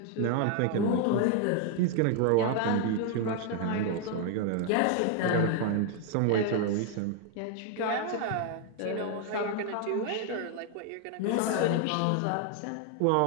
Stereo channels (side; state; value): both; different; correlation 0.01